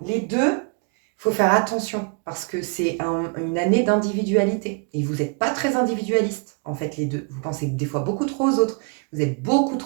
les deux, il faut faire attention, parce que c'est une année d'individualité, et vous n'êtes pas très individualiste, en fait, les deux. Vous pensez des fois beaucoup trop aux autres, vous êtes beaucoup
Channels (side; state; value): left; quieter; 36.6 dB